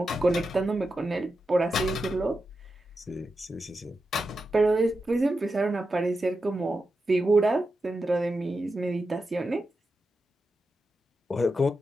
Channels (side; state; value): both; normal; correlation 0.89